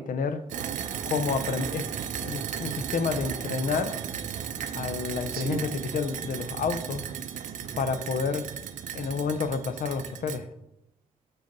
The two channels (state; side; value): normal; both; correlation 0.38